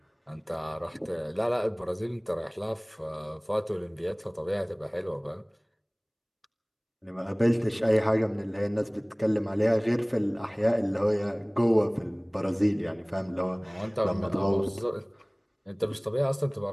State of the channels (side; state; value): both; identical; correlation 1.00